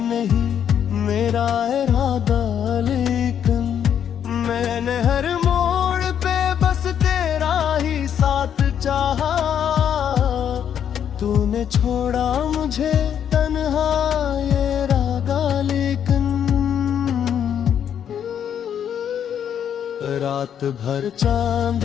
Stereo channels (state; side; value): quieter; right; 8.9 dB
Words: नहीं मेरा इरादा। लेकिन मैंने हर मोड़ पे बस तेरा ही साथ चाहा, तूने छोड़ा मुझे तन्हा ये रागा। लेकिन रात भर